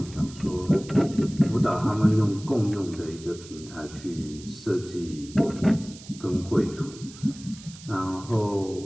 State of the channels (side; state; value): right; noise; hiss, 18 dB below the sound